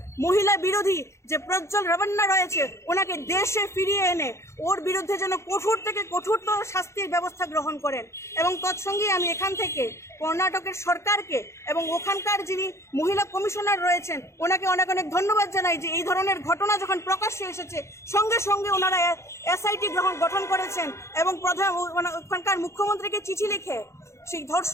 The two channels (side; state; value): right; late; 0.13 ms